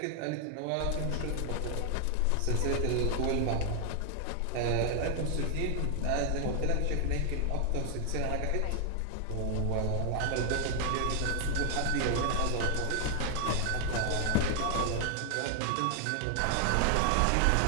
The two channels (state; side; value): different; both; correlation 0.00